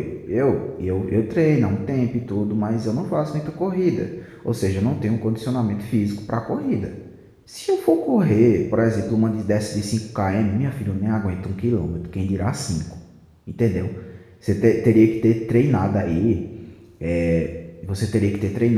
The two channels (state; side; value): identical; both; correlation 1.00